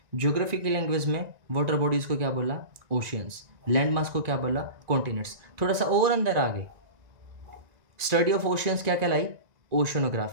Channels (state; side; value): late; left; 1.9 ms